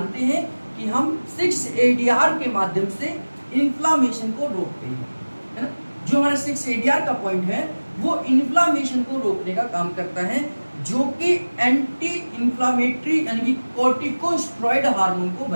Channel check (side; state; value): both; inverted; correlation -1.00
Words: हैं कि हम 6-ADR के माध्यम से इंफ्लेमेशन को रोकते हैं, है ना। जो हमारा 6-ADR का पॉइंट है वो इंफ्लेमेशन को रोकने का काम करता है, जो कि एंटी इंफ्लेमेटरी यानी कि कॉर्टिकोस्टेरॉइड हार्मोन को